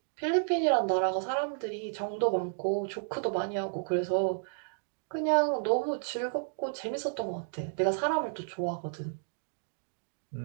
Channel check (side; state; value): left; silent; digital silence